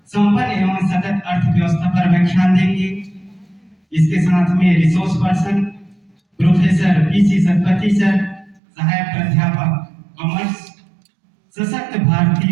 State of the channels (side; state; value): left; drops out; at 8.6 s